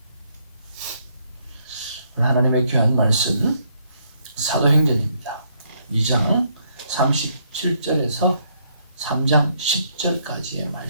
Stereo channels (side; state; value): both; inverted; correlation -0.71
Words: 하나님의 귀한 말씀 사도행전입니다. 2장 37절에서 3장 10절까지의